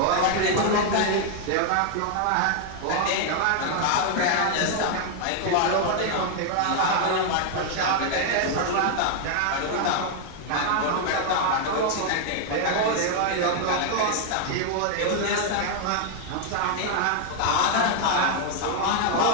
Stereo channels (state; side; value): different; both; correlation 0.00